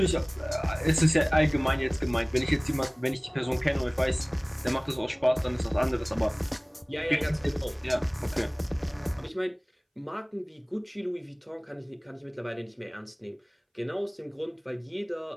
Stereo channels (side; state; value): both; identical; correlation 1.00